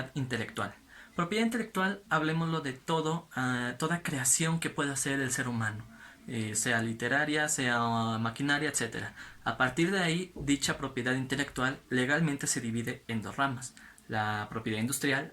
intelectual. Propiedad intelectual, hablemoslo de toda creación que pueda hacer el ser humano, sea literaria, sea maquinaria, etcétera. A partir de ahí, dicha propiedad intelectual legalmente se divide en dos ramas, la propiedad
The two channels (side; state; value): both; identical; correlation 1.00